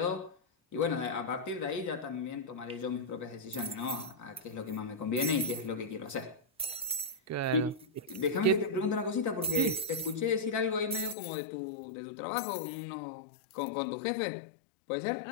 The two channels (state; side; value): drops out; right; at 11.2 s